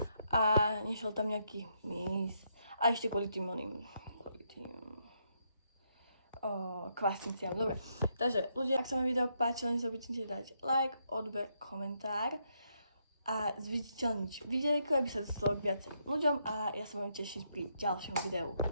a nešiel tam nejaký mys. A ešte kvôli tým kvasniciam. Dobre, takže ľudia, ak sa vám video páčilo, nezabudnite dať like, odber, komentár a zviditeľniť videjko, aby sa dostalo k viacerým ľuďom a ja sa budem tešiť pri ďalšom videu.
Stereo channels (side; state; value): both; inverted; correlation -0.77